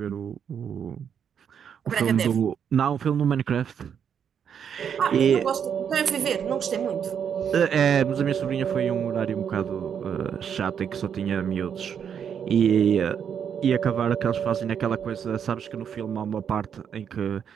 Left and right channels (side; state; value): left; quieter; 7.9 dB